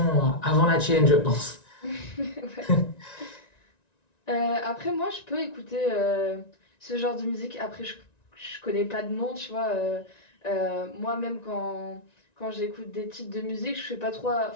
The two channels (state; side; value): late; right; 1.9 ms